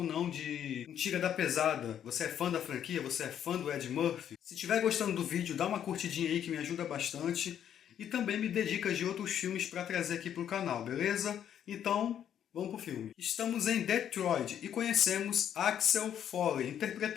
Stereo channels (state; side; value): quieter; right; 9.7 dB